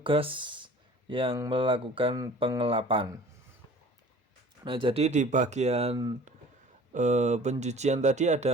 yang melakukan pengelapan. Nah, jadi di bagian pencucian tadi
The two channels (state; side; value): normal; both; correlation 0.46